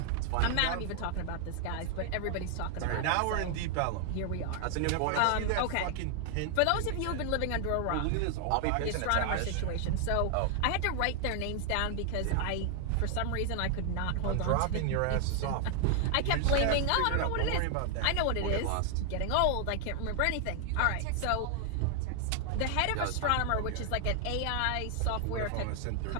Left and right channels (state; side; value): different; both; correlation 0.00